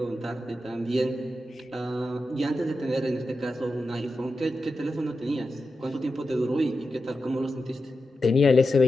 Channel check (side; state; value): both; normal; correlation 0.90